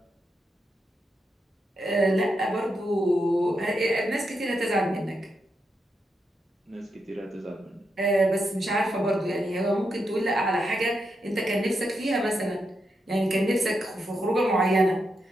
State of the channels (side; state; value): both; normal; correlation 0.84